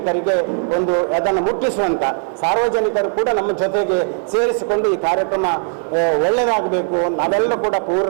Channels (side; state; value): left; silent; 56 dB below the other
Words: ಒಂದು ಅದನ್ನು ಮುಟ್ಟಿಸುವಂಥ ಸಾರ್ವಜನಿಕರು ಕೂಡ ನಮ್ಮ ಜೊತೆಗೆ ಸೇರಿಸಿಕೊಂಡು ಈ ಕಾರ್ಯಕ್ರಮ ಒಳ್ಳೆಯದಾಗಬೇಕು, ನಾವೆಲ್ಲರೂ ಕೂಡ